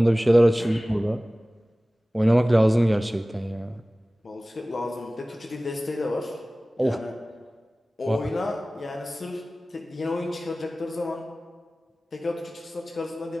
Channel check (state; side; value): normal; both; correlation 0.98